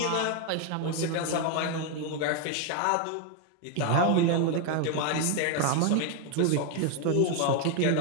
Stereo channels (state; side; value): different; both; correlation 0.01